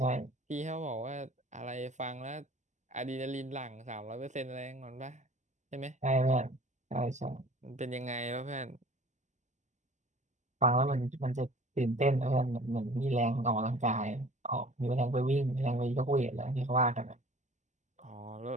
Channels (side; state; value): left; late; 0.34 ms